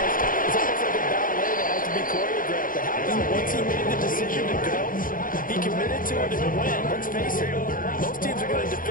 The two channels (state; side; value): late; right; 0.40 ms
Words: it's almost like a ballet that has to be choreographed. But how about once he made the decision to go, he committed to it and went. Let's face it, most teams are going to